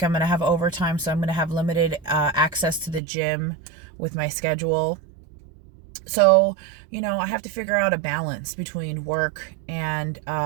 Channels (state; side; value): drops out; left; at 3.0 s